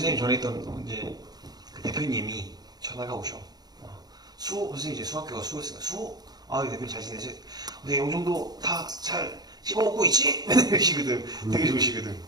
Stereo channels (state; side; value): late; left; 0.19 ms